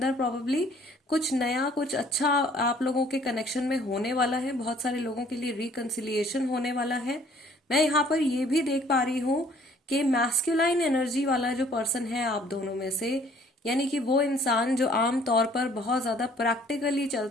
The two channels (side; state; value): both; normal; correlation 0.58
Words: प्रोबेबली कुछ नया, कुछ अच्छा आप लोगों के कनेक्शन में होने वाला है. बहुत सारे लोगों के लिए रिकंसिलिएशन होने वाला है. मैं यहाँ पर ये भी देख पा रही हूँ कि मैस्कुलाइन एनर्जी वाला जो पर्सन है आप दोनों में से, यानी कि वो इंसान जो आम तौर पर बहुत ज्यादा प्रैक्टिकली